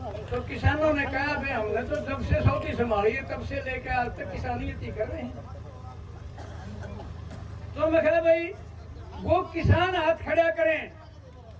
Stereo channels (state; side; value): identical; both; correlation 1.00